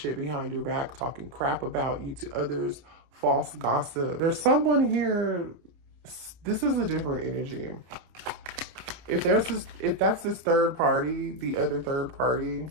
behind your back, talking crap about you to others, false gossip. There's someone here. This is a different energy. If that's this third party, the other third party,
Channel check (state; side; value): late; left; 29 ms